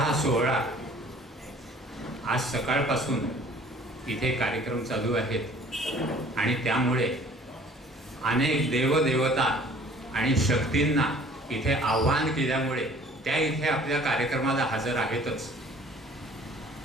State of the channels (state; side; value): normal; both; correlation 0.52